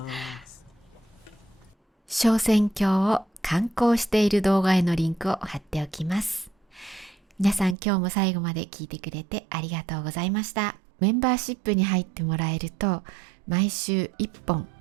す。昇仙峡を観光している動画へのリンクを貼っておきます。皆さん今日も最後まで聞いてくれてありがとうございました。メンバーシップに入ってもらえると毎週1本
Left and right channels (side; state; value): left; drops out; at 7.8 s